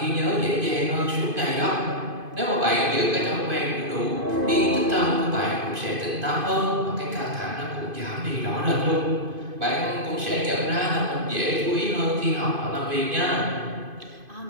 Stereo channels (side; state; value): left; late; 2.5 ms